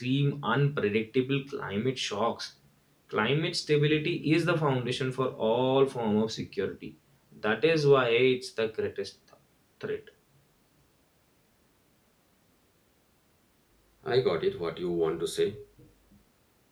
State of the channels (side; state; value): both; identical; correlation 1.00